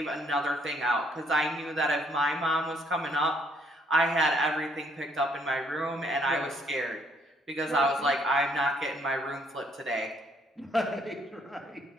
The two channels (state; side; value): normal; both; correlation 0.67